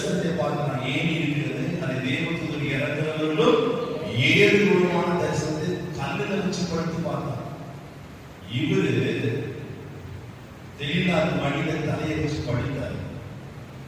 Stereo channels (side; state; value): both; identical; correlation 1.00